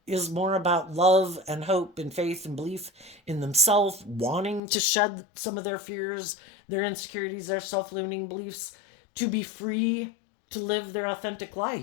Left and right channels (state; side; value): drops out; right; at 4.6 s